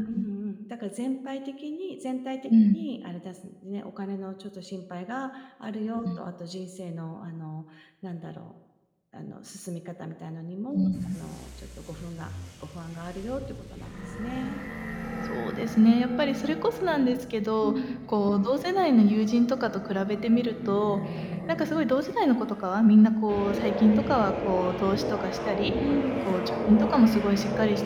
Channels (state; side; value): identical; both; correlation 1.00